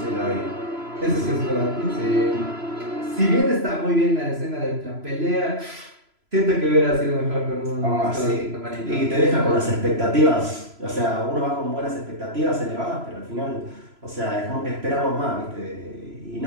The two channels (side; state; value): left; late; 3.0 ms